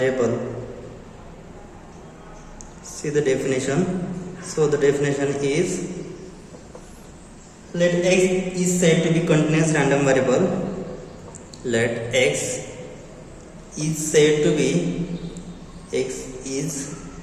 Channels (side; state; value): both; identical; correlation 1.00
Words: See the definition. So the definition is, let x is said to be continuous random variable. Let x is said to be